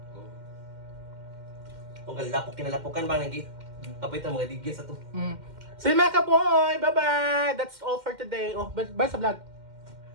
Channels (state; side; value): late; left; 2.1 ms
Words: Kung kalapok kinalapokan ba nagi. Kapit ang mga digya sa to. So yun mga kaboy, bye-bye! That's all for today. Oh, bye sa vlog.